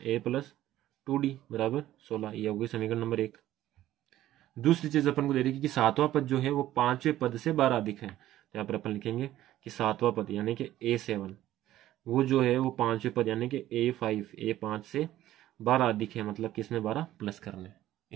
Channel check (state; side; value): quieter; left; 13.9 dB